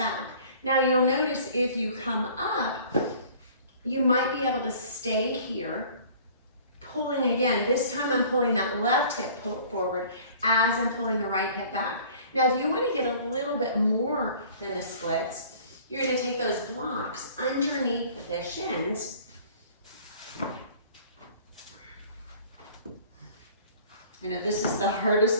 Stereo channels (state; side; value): inverted; both; correlation -0.50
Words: Now you'll notice if you come up, you might be able to stay here, pulling again. This time I'm pulling that left hip forward as I'm pulling the right hip back. Now if you want to get a little bit more than the splits, you're going to take those blocks underneath the shins. I know this is the